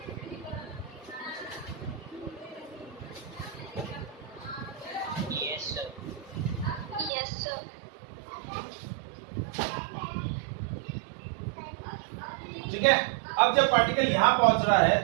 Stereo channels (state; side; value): drops out; left; at 7.1 s